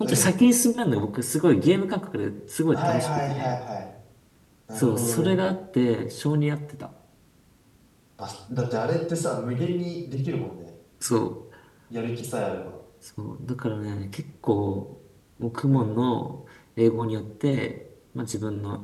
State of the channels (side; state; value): both; identical; correlation 1.00